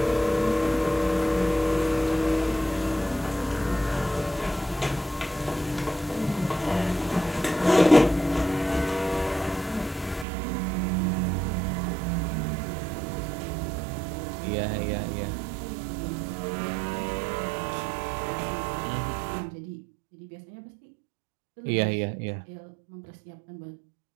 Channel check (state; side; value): drops out; left; at 10.2 s